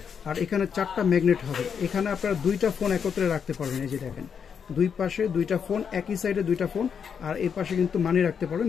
আর এখানে 4টা ম্যাগনেট হবে। এখানে আপনারা দুইটা ফোন একত্রে রাখতে পারবেন। এই যে দেখেন, দুই পাশে দুইটা ফোন, একই সাইডে দুইটা ফোন, আর এই পাশে কিন্তু মানি রাখতে পারবেন,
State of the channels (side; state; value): right; quieter; 7.0 dB